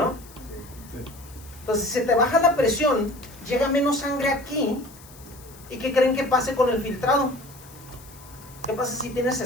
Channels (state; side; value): noise; left; hiss, 21 dB below the sound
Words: Sí. Entonces, si se te baja la presión, llega menos sangre aquí. ¿Y qué creen que pase con el filtrado? ¿Qué pasa si tienes